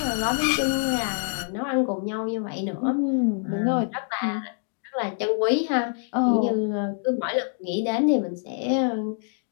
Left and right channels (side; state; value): right; silent; digital silence